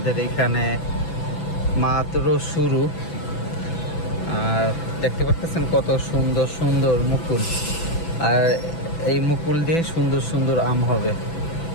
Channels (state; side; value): late; right; 6.0 ms